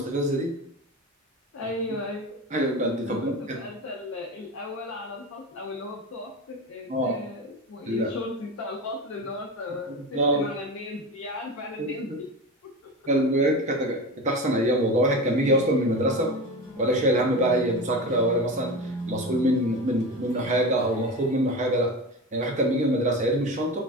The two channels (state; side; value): normal; both; correlation 0.26